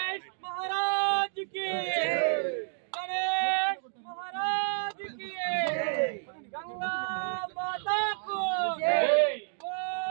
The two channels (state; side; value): silent; left; digital silence